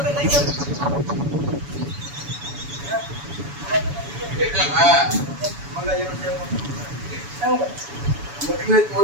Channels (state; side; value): late; left; 7.0 ms